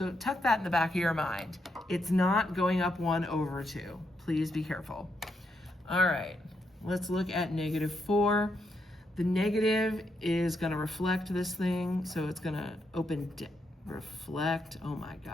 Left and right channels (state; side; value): normal; both; correlation 0.80